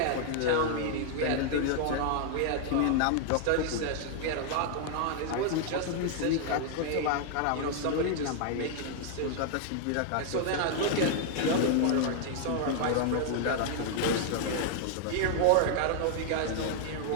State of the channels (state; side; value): different; both; correlation 0.00